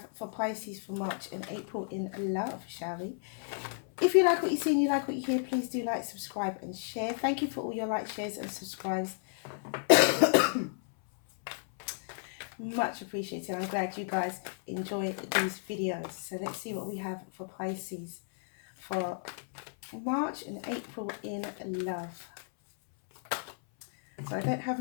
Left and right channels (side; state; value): right; silent; 56 dB below the other